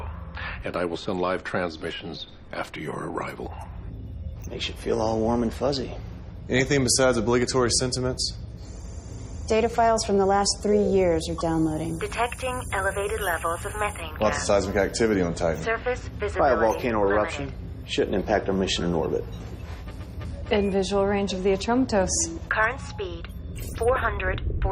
and I will send live transmissions after your arrival. Makes you feel all warm and fuzzy. Anything besides obligatory sentiments? Data files from the last 3 years are downloading. Detecting elevated levels of methane gas. Lots of seismic activity on Titan. Surface By a visibility volcano eruption. limited. Shouldn't impact our mission in orbit. In visual range of the Atromatos. Current speed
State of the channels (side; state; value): both; identical; correlation 1.00